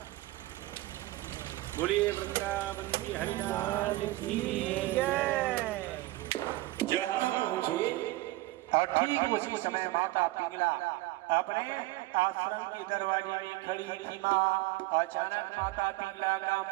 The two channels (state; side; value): quieter; left; 18.9 dB